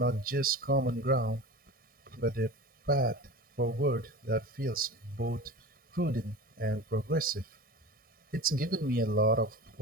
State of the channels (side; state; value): both; normal; correlation 0.33